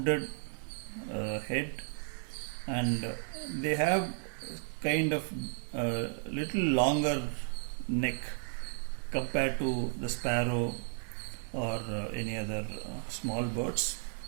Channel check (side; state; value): left; silent; digital silence